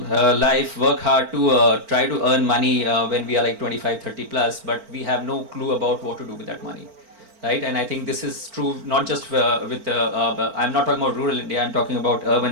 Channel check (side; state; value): left; late; 4.4 ms